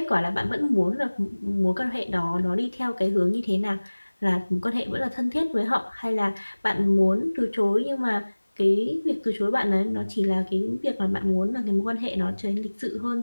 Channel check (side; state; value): both; inverted; correlation -1.00